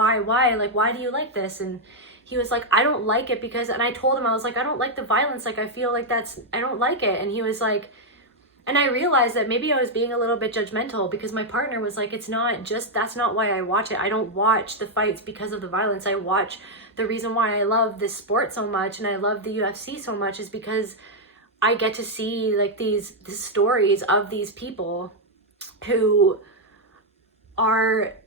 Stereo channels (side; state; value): both; normal; correlation -0.01